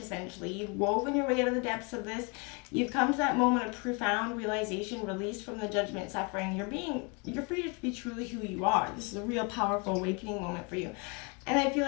essentially. You've woven your way out of the depths of this. You've come to that moment of profound realization, released from the judgment, suffering. You're free to be truly who you are. This is a real powerful awakening moment for you. And I feel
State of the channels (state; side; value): quieter; right; 31.7 dB